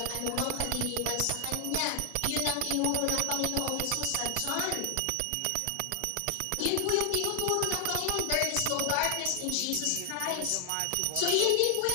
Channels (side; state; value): both; different; correlation 0.00